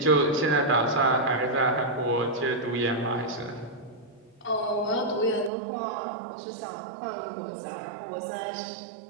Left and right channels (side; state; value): left; drops out; at 5.5 s